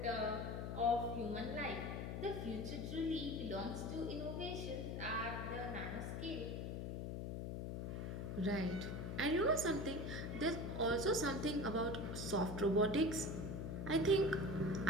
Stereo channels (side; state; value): left; noise; hum, 4 dB below the sound